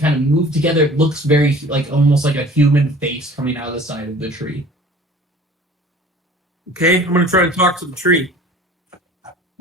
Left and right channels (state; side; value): normal; both; correlation 0.46